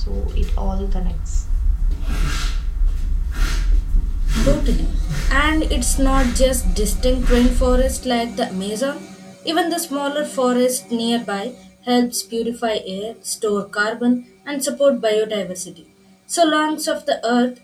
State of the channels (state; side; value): identical; both; correlation 1.00